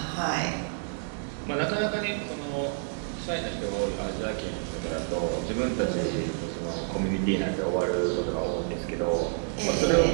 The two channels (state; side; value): silent; left; digital silence